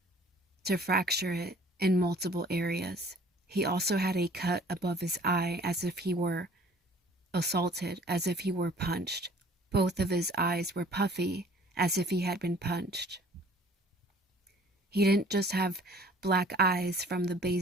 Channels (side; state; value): both; normal; correlation 0.52